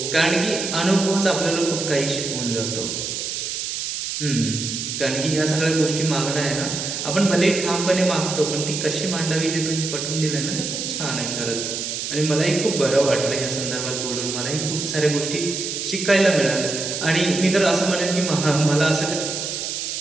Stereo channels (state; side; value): noise; right; hiss, 4 dB below the sound